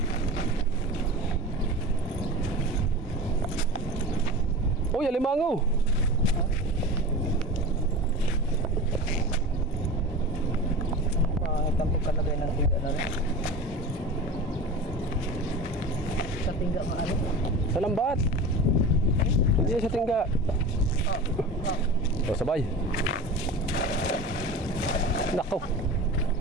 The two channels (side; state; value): both; normal; correlation 0.33